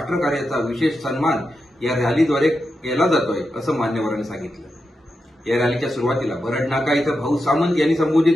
विशेष सन्मान या रॅलीद्वारे केला जातोय असं मान्यवरांनी सांगितलं। या रॅलीच्या सुरुवातीला बरड नाका इथं भाऊ सामंत यांनी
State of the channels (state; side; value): normal; both; correlation 0.88